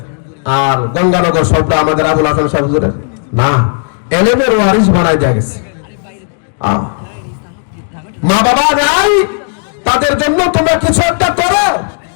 আর গঙ্গানগর সবটা আমাদের আবুল হাসান সাহেব হুজুরের? না, এলেমের ওয়ারিস বানাই দেয়া গেছে। মা বাবা নাই, তাদের জন্য তোমরা কিছু একটা করো,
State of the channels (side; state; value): right; silent; digital silence